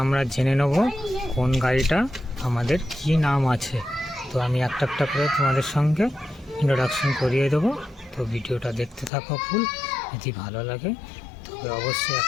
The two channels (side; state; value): right; drops out; at 9.1 s